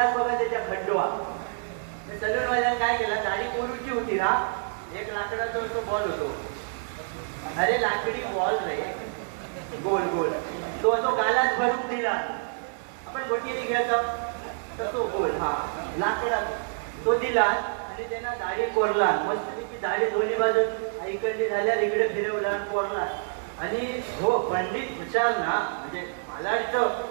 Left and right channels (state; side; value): silent; left; digital silence